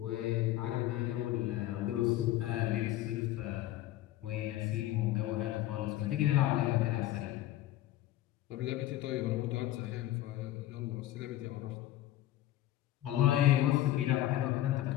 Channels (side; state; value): right; quieter; 14.3 dB